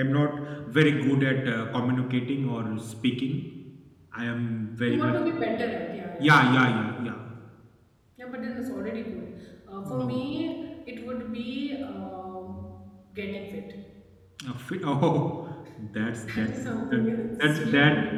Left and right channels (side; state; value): both; identical; correlation 1.00